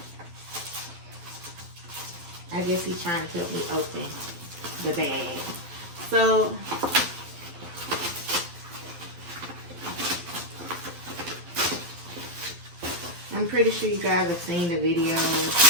I guess he's trying to help me open the bag. So I'm pretty sure you guys have seen the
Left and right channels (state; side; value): late; left; 12 ms